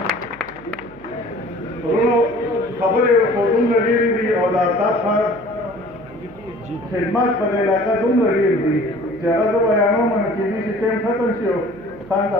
ورونو خبرې خو دومره ډېرې دي او د آفتاب خان خدمات په دې علاقه دومره ډېر دي چې هغه زه بیانوم نو کېدای شي ټایم ختم شي او خان ته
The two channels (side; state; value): right; noise; hum, 23 dB below the sound